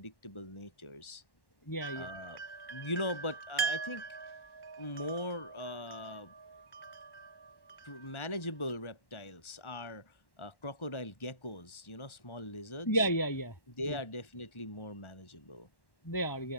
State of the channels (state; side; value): late; right; 1.1 ms